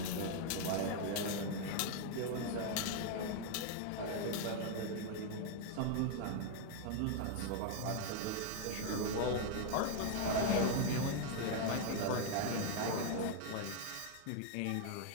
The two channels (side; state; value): both; different; correlation 0.00